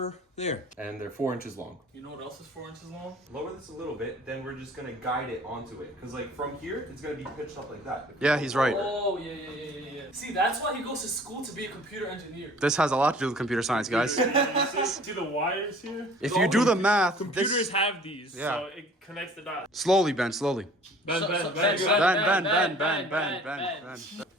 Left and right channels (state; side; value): normal; both; correlation 0.50